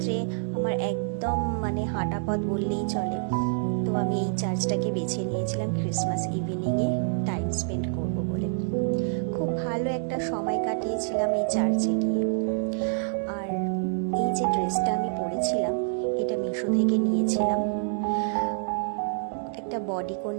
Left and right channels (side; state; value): left; silent; digital silence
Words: আমার একদম হাঁটা পথ বললেই চলে। তো আমি এই চার্চটাকে বেছে নিয়েছিলাম ক্রিসমাস ইভিনিংয়ে টাইম স্পেন্ড করব বলে। খুব ভালো একটা সময় কাটিয়েছিলাম এই চার্চে গিয়ে। আর এই যে ড্রেসটা আমি পরেছিলাম, এটা মিশো থেকে নিয়েছিলাম। একটা বডিকন